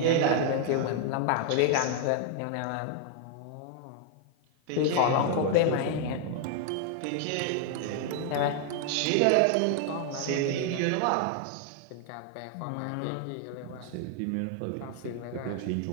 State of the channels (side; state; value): both; different; correlation 0.00